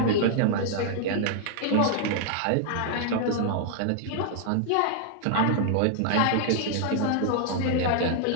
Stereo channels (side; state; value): both; different; correlation -0.01